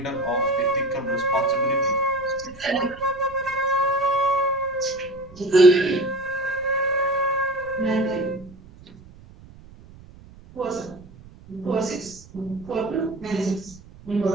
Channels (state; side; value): noise; right; rumble, 21 dB below the sound